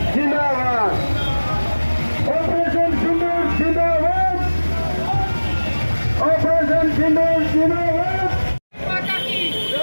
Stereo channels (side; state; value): both; inverted; correlation -1.00